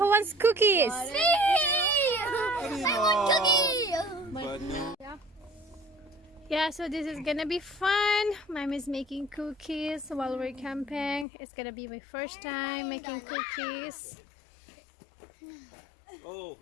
wants cookies? Me! I want cookie! But no. Yeah, so this is gonna be fun. Mom is making cookies while we're camping. It's gonna be my first time making cookies. Oh,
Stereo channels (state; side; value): drops out; right; at 11.2 s